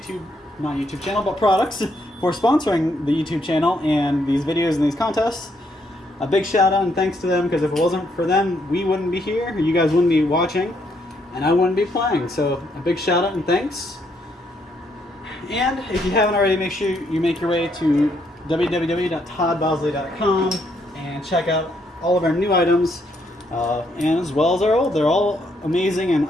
YouTube channel, but products, for sponsoring the YouTube channel and these videos and these contests. A big shout out and thanks to them, because if it wasn't for them, we wouldn't be here, you guys wouldn't be watching, and I wouldn't be playing. So a big shout out and thanks. And if you haven't already, make sure you make your way to www.toddbowsley.com and check out all of our new items, and as well as our old. They're all amazing and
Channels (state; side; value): normal; both; correlation 0.73